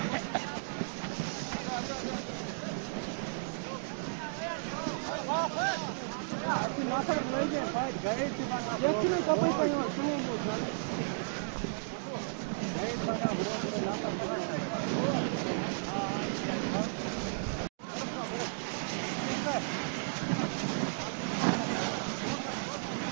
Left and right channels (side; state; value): left; silent; digital silence